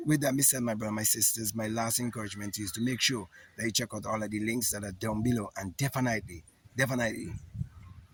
with that, Mr. My brother, my sisters, my last encouragement is to make sure that you check out all of the links that are down below, and definitely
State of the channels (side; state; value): both; identical; correlation 1.00